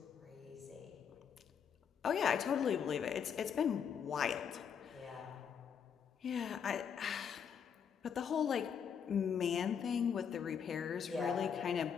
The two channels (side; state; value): right; quieter; 7.4 dB